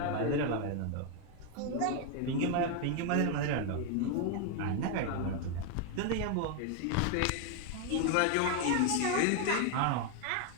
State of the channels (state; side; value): different; both; correlation 0.01